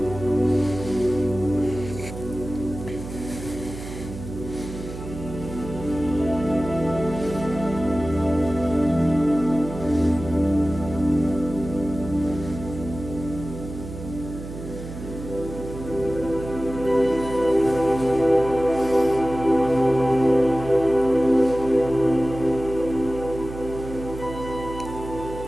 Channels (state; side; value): noise; right; hum, 11 dB below the sound